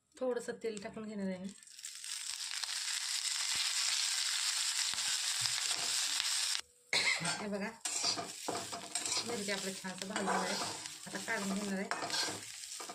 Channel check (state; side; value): identical; both; correlation 1.00